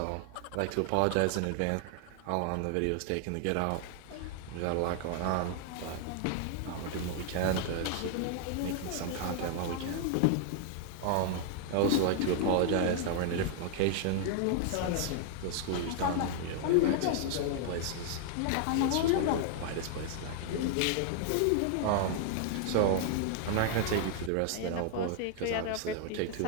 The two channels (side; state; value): both; different; correlation 0.00